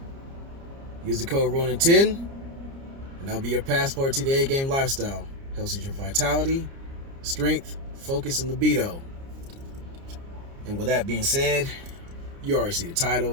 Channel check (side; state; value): left; late; 29 ms